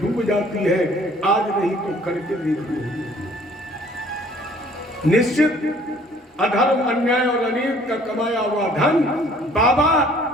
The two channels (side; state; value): both; normal; correlation 0.56